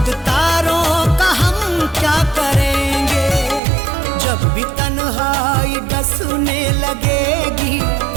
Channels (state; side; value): drops out; left; at 3.6 s